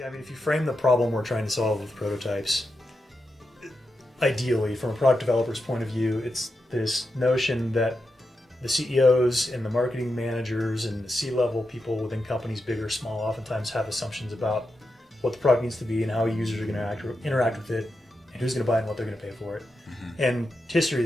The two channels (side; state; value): both; normal; correlation 0.87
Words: I mean, if you frame the problem we're trying to solve with prototypes, ideally, from a product developer's point of view, it's this notion that the CEOs and the marketing managers and the C-level people within companies, big or small, oftentimes have assumptions about what the product needs to be and how users are going to interact with it and who's going to buy it and what they're going to pay for it. And history